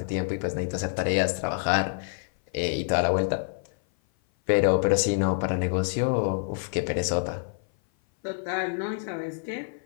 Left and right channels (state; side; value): silent; right; 56 dB below the other